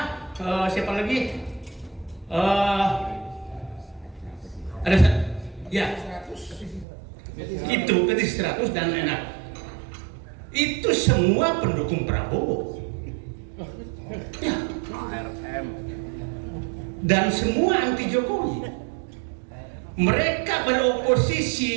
siapa lagi? Ada ya itu Petit 100 dan enak. Itu semua pendukung Prabowo. Ya. Dan semua anti Jokowi. Mereka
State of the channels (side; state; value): left; drops out; at 6.9 s